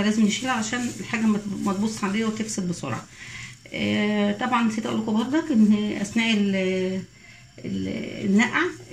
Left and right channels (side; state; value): both; identical; correlation 1.00